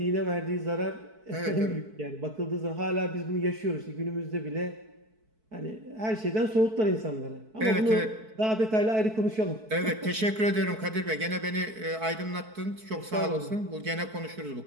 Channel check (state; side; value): late; left; 4.6 ms